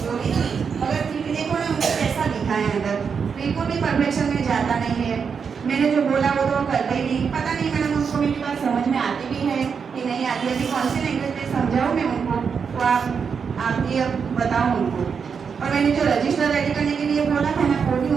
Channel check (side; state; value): left; quieter; 6.2 dB